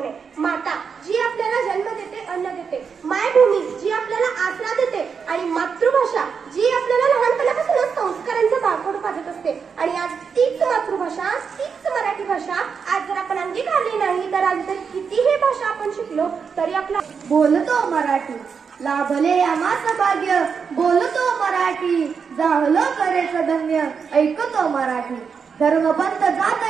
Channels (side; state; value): left; quieter; 6.1 dB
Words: आहे. माता जी आपल्याला जन्म देते, अन्न देते. मायभूमी जी आपल्याला आसरा देते. आणि मातृभाषा जी आपल्याला लहानपणापासूनच संस्कारांचं बाळकडू पाजत असते. आणि आज तीच मातृभाषा, तीच मराठी भाषा आज जर आपण अंगीकारली नाही, तर आज जर कितीही भाषा आपण शिकलो तरी आपला बोलतो मराठी, लाभले आम्हास भाग्य. बोलतो मराठी, जाहलो करेच धन्य. ऐकतो मराठी, धर्मपंथ जात